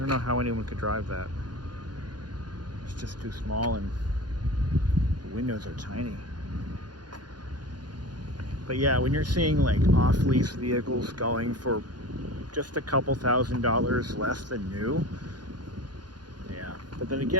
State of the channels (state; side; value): late; left; 0.70 ms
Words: know how anyone could drive that. It's just too small, and the windows are tiny. But yeah, when you're seeing like off-lease vehicles going for just a couple $1,000s less than new, yeah. But then